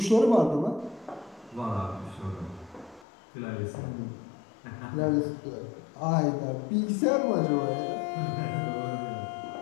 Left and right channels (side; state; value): right; drops out; at 3.1 s